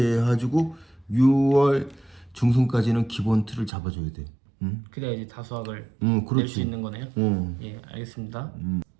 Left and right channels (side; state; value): left; drops out; at 3.7 s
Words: 해가지고 6월 중순까지는 기본 틀을 잡아줘야 돼. 그래야 이제 다수확을 그렇지. 낼 수 있는 거네요. 예, 알겠습니다.